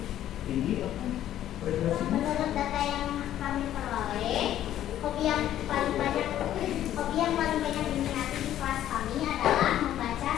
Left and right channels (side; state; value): right; quieter; 12.0 dB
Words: tinggi frekuensinya. Menurut data yang kami peroleh, hobi yang paling banyak diminati di kelas kami adalah membaca